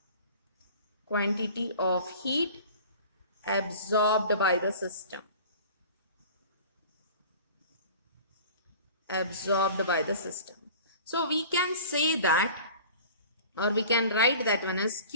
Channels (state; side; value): inverted; both; correlation -0.43